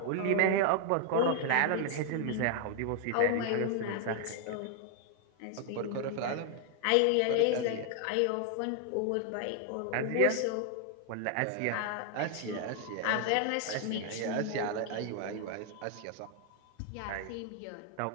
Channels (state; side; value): different; both; correlation 0.00